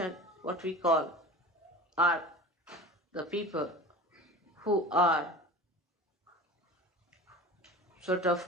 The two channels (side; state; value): both; normal; correlation 0.36